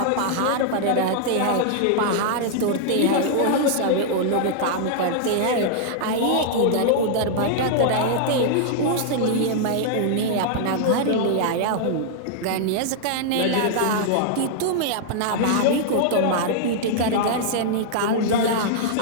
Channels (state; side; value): different; both; correlation -0.01